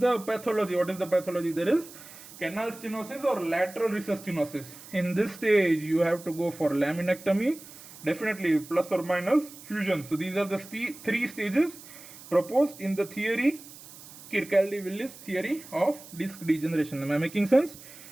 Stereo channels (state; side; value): noise; right; hiss, 18 dB below the sound